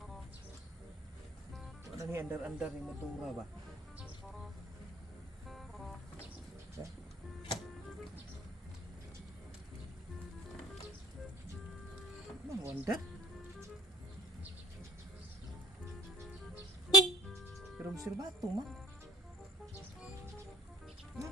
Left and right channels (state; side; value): normal; both; correlation 0.56